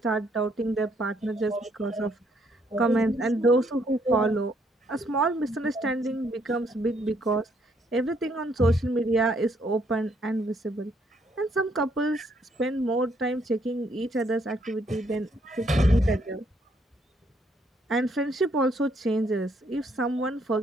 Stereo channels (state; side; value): normal; both; correlation 0.70